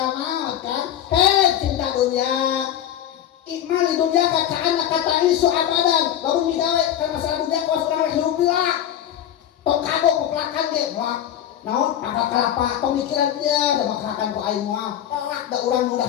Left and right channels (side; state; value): right; quieter; 10.9 dB